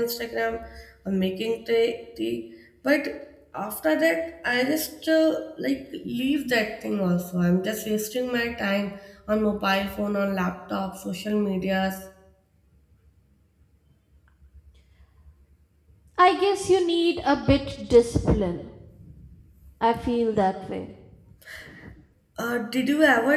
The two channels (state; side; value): identical; both; correlation 1.00